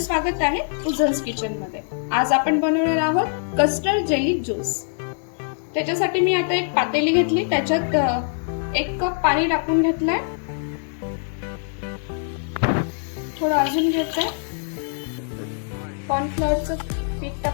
आहे उजन्स किचन मध्ये। आज आपण बनवणार आहोत कस्टर्ड जेली ज्यूस। त्याच्यासाठी मी आता एक पातेली घेतली, त्याच्यात 1 कप पाणी टाकून घेतलंय। थोडं अजून घेतलंय, कॉर्नफ्लोअरचं पीठ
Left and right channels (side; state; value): right; silent; 59 dB below the other